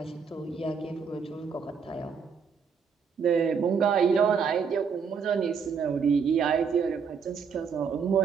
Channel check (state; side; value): quieter; left; 6.1 dB